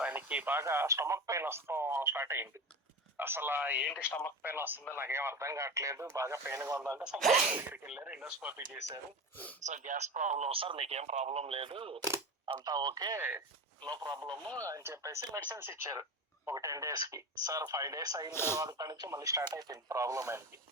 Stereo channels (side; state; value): both; normal; correlation 0.26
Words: ఆయనకి బాగా స్టమక్ పెయిన్ వస్తాం స్టార్ట్ అయింది. అసలు ఏంటి స్టమక్ పెయిన్ వస్తుందో నాకేం అర్థం కావట్లేదు, బాగా పెయిన్ గా ఉందంటే సో డాక్టర్ దగ్గరికి వెళ్ళారు, ఎండోస్కోపీ చేశారు. సో గ్యాస్ ప్రాబ్లం సార్, మీకేం ప్రాబ్లం లేదు, అంతా ఓకే, నో ప్రాబ్లమ్ అని చెప్పేసి మెడిసిన్స్ ఇచ్చారు ఒక 10 days కి. సార్ 5 days అయిన తర్వాత నుంచి మళ్ళీ స్టార్ట్ అయిపోయింది ప్రాబ్లం. ఆయనకి